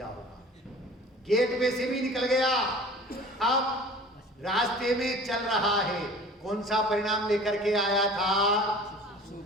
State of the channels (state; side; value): normal; both; correlation 0.44